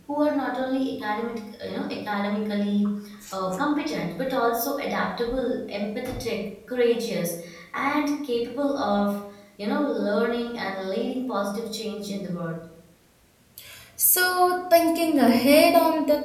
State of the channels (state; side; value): identical; both; correlation 1.00